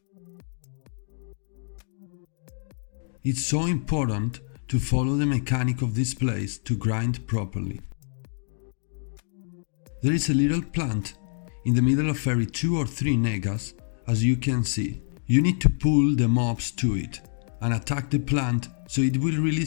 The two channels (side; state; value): right; silent; digital silence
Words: It's so important to follow the mechanic of this place to grind properly. There is a little plant in the middle of every 2 or 3 Nagas, as you can see. You need to pull the mobs to it and attack the plant so it will